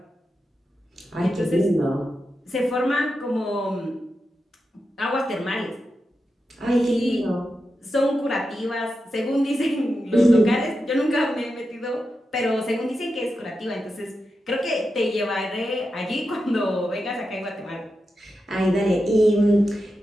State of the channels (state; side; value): normal; both; correlation 0.89